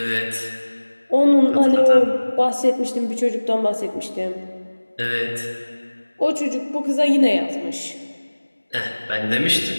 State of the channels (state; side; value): inverted; both; correlation -1.00